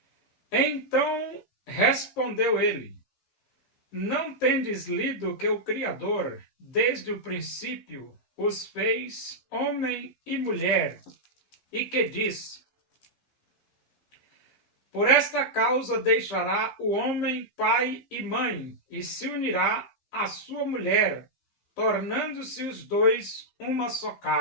Então respondeu ele. Não tendes lido que o Criador, desde o princípio, os fez homem e mulher, e que diz: por esta causa deixará o homem pai e mãe, e se unirá à sua mulher, tornando-se os dois uma só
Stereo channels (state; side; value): late; right; 15 ms